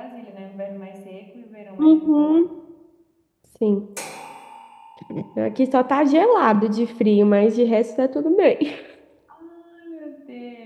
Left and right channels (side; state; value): both; identical; correlation 1.00